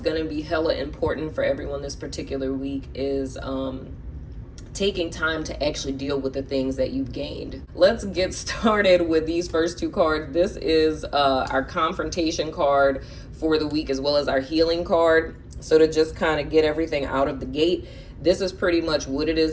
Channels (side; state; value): both; identical; correlation 1.00